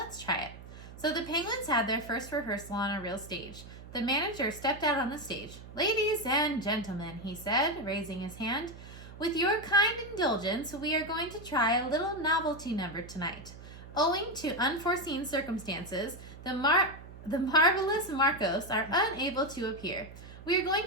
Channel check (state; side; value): noise; right; hum, 15 dB below the sound